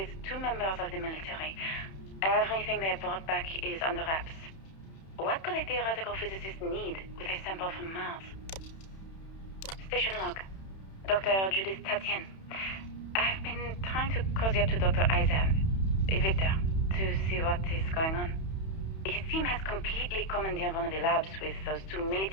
2 members of the military. Everything they brought back is under wraps. What could a theoretical physicist need with a sample from Mars? Station log. Dr. Judith Tatien. I've been trying to cozy up to Dr. Isa, Victor, to see what is going on. His team has completely commandeered one of the labs with those 2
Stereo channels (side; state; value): right; late; 31 ms